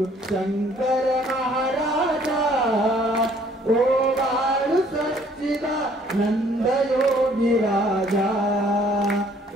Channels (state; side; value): normal; both; correlation 0.60